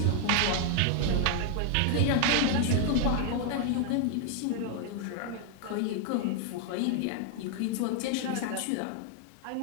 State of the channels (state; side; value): different; both; correlation 0.00